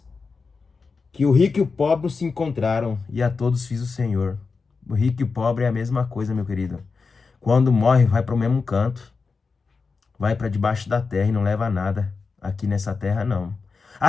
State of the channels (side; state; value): right; quieter; 4.7 dB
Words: que o rico e o pobre se encontraram e a todos fiz o Senhor. O rico e o pobre é a mesma coisa, meu querido. Quando morre, vai para o mesmo canto, vai para debaixo da terra e não leva nada aqui nessa terra, não. A